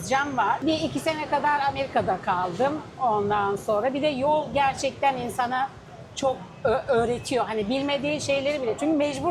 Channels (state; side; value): identical; both; correlation 1.00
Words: var. 1-2 sene kadar Amerika'da kaldım ondan sonra. Bir de yol gerçekten insana çok öğretiyor. Hani bilmediğin şeyleri bile. Çünkü